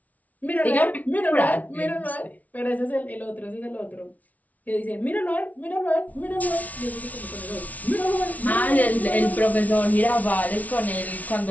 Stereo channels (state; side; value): late; right; 0.072 ms